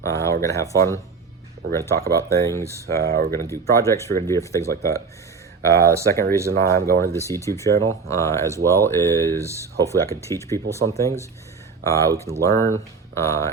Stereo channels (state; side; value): quieter; left; 5.0 dB